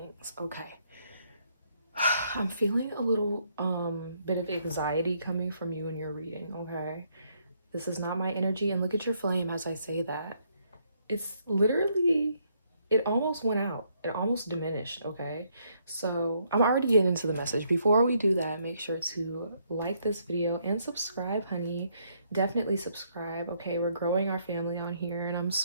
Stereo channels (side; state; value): both; inverted; correlation -0.72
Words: Okay. I'm feeling a little bit of anxiety coming from you in your reading, okay? This is not my energy, and look at your flame as I say that. It's literally, it almost went out. It almost diminished, okay? So I'm already getting into the message. Before we do that, make sure to like this video and subscribe, honey. Definitely subscribe, okay? We're growing our family on here, and I'm